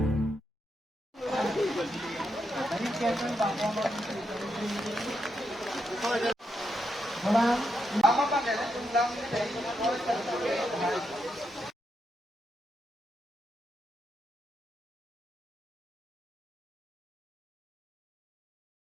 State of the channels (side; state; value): both; normal; correlation 0.82